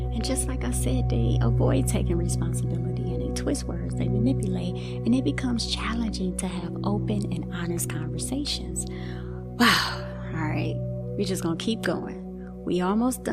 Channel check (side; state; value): both; identical; correlation 1.00